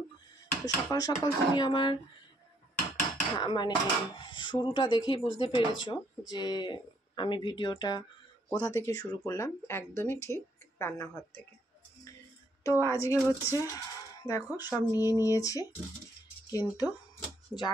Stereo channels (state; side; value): normal; both; correlation 0.70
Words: তো সকাল সকাল তুমি আমার মানে শুরুটা দেখেই বুঝতে পেরেছো যে আমি ভিডিওটা কোথা থেকে শুরু করলাম। একদমই ঠিক, রান্নাঘর থেকে। তো আজকে হচ্ছে দেখো সব নিয়ে নিয়েছি, কিন্তু যা